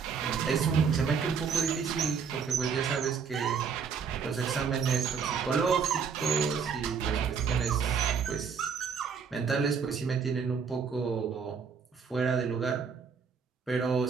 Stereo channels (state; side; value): quieter; left; 6.1 dB